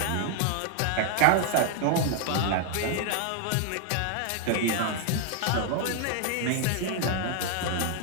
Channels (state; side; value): different; both; correlation 0.00